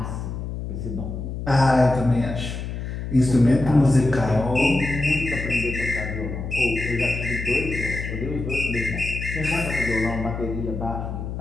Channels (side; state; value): left; noise; hum, 6 dB below the sound